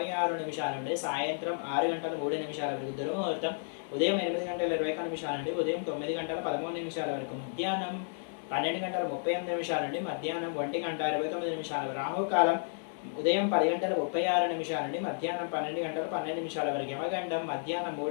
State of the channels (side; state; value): right; silent; digital silence